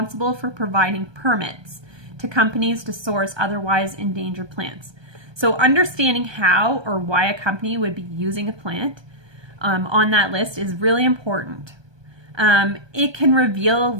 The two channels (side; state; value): left; late; 1.2 ms